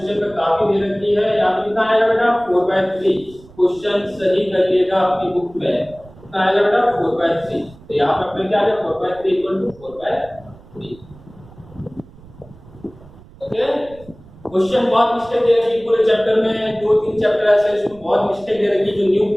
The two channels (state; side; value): noise; right; rumble, 22 dB below the sound